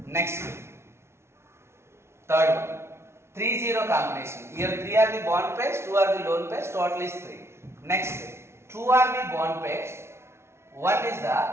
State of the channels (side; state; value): left; late; 0.13 ms